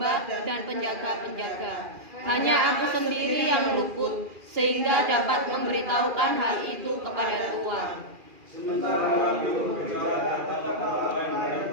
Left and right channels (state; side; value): late; left; 2.4 ms